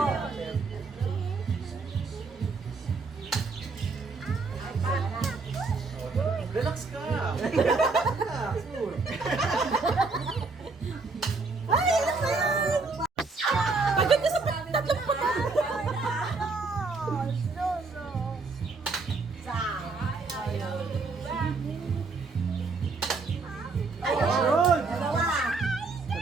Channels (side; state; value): left; quieter; 4.0 dB